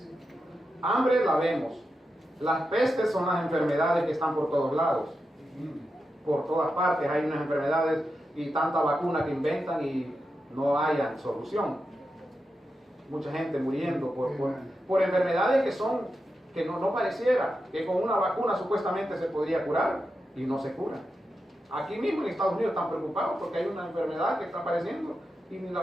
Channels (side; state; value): both; normal; correlation 0.88